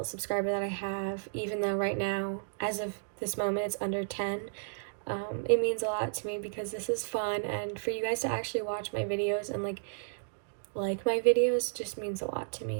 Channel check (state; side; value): silent; left; digital silence